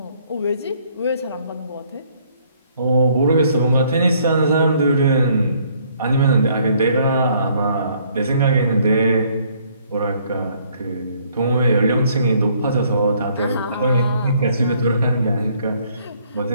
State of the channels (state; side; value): inverted; both; correlation -0.64